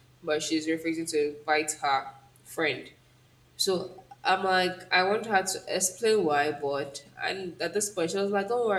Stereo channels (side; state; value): both; identical; correlation 1.00